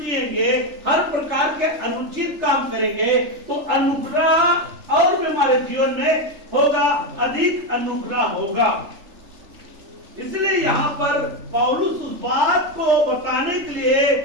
जिएंगे, हर प्रकार के अनुचित काम करेंगे, तो अनुग्रह और भी हमारे जीवन में होगा, अधिक अनुग्रह होगा। इसलिए यहाँ पर पौलुस उस बात को बताने के लिए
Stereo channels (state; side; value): late; left; 3.3 ms